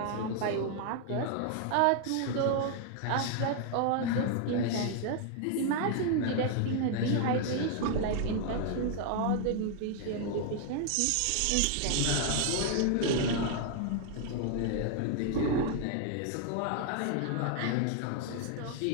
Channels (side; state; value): both; different; correlation 0.00